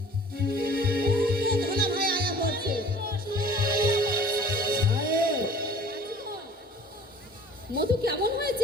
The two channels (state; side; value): normal; both; correlation 0.48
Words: ধনা ভাই আয়া বলছে। সাহেব, মধু কেমন